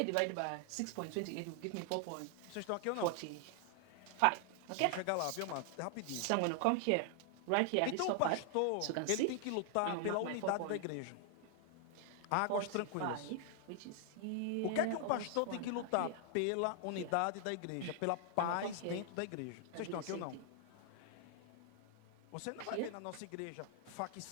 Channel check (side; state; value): both; different; correlation 0.00